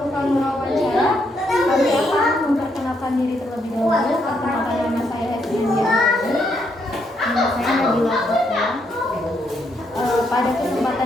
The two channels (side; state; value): both; normal; correlation 0.76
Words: wawancara, kami akan memperkenalkan diri terlebih dahulu. Perkenalkan nama saya Hesdian Diani. Nama saya Nabila Fatwa. Pada